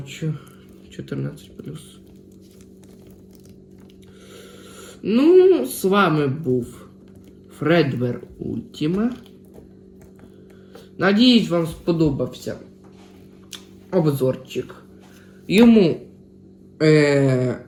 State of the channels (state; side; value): identical; both; correlation 1.00